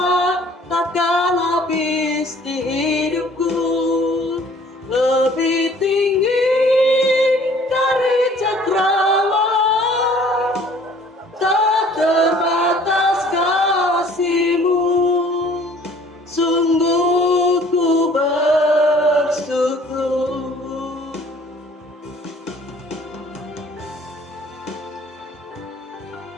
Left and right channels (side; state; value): both; normal; correlation 0.54